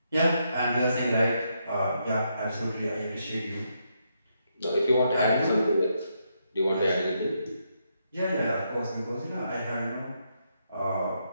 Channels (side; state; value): both; inverted; correlation -0.79